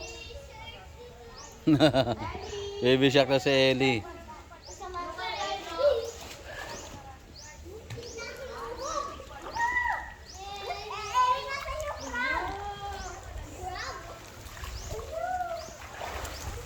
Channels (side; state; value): both; identical; correlation 1.00